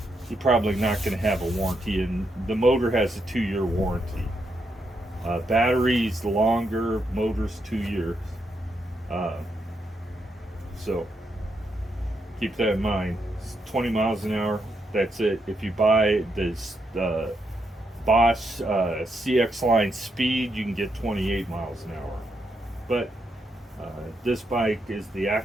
you're probably not going to have a warranty, and the motor has a 2-year warranty. Batteries longer, motors 2 years. Uh, so keep that in mind. It's 20 miles an hour. That's it. If you buy this Bosch CX line speed, you can get 28 miles an hour. But this bike is the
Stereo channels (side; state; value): both; normal; correlation 0.80